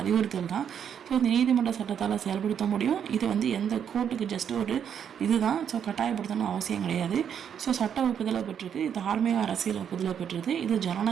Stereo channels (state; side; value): quieter; left; 8.3 dB